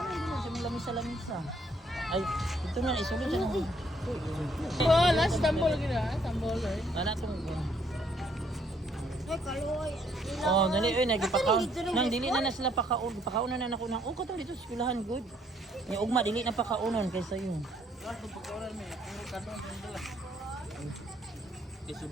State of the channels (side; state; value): both; normal; correlation 0.68